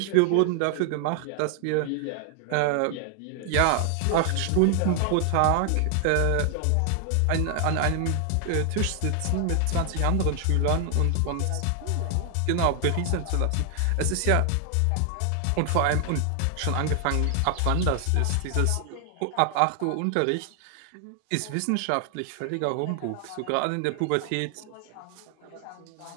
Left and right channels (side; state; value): both; different; correlation 0.00